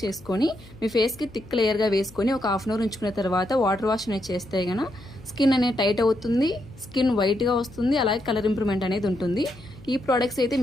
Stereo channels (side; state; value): left; noise; hum, 22 dB below the sound